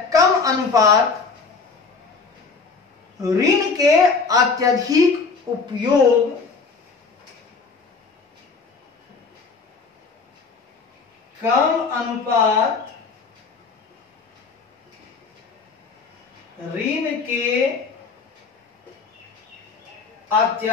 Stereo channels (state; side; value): quieter; right; 4.6 dB